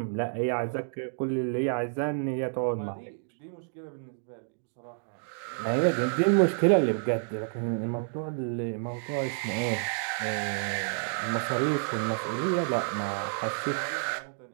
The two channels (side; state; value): left; silent; digital silence